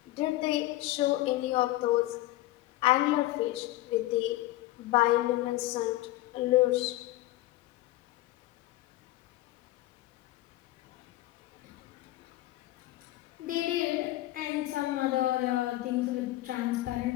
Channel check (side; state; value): right; quieter; 17.0 dB